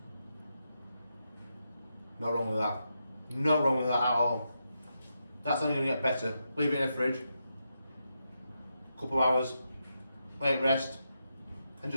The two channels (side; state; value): both; inverted; correlation -0.85